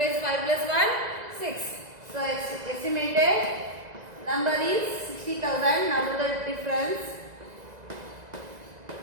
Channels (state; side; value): late; left; 2.0 ms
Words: 5 plus 1 6. So estimated number is 60,000. Now do the difference.